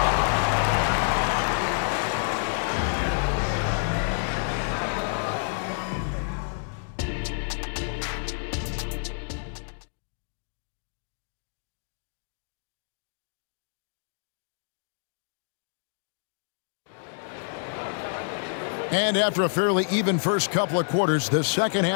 And after a fairly even first couple of quarters, the second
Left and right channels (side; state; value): right; silent; digital silence